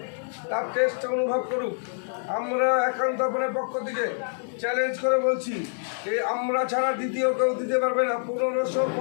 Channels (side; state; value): right; silent; digital silence